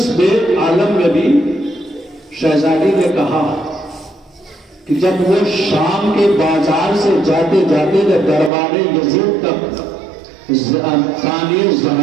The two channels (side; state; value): left; drops out; at 8.5 s